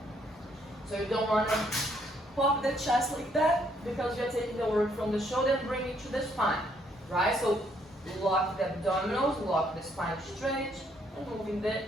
So you don't want to pop the chest like that because you're taking the work from the shoulder and bring it to the spine, right? So lock the abdominals, lock the spine straight, and moving the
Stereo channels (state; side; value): normal; both; correlation 0.69